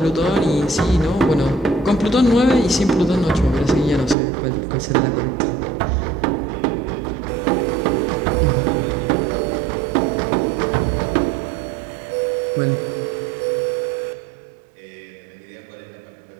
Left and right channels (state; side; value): drops out; left; at 4.2 s